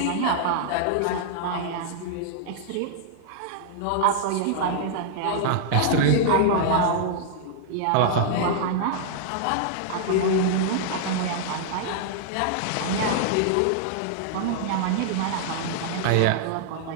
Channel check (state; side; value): different; both; correlation -0.01